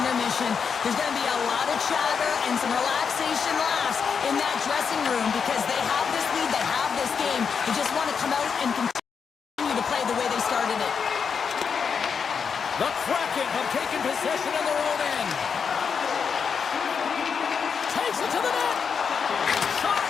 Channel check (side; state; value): right; quieter; 6.3 dB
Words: intermission, there's going to be a lot of chatter and some relaxation laughs in that dressing room because they have this lead, they have this game. They just want to come out and continue to play the way they started it. The Kraken have taken possession in their own end. Takes it to the net. Shot.